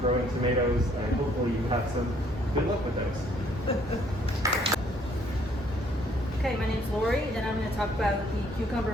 tomatoes, and hopefully you have some good luck with those. Okay, my name's Lori, and I'm going to talk about the cucumber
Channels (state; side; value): normal; both; correlation 0.64